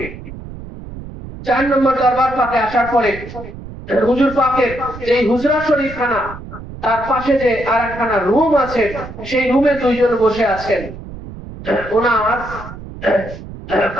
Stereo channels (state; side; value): noise; right; rumble, 13 dB below the sound